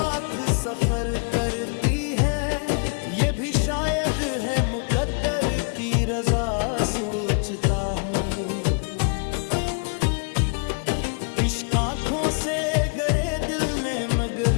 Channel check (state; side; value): quieter; right; 39.1 dB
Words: सफर करती है, ये भी शायद है मुकद्दर की रजा। सोचता हूँ इश्क आँखों से गरे दिल ने मगर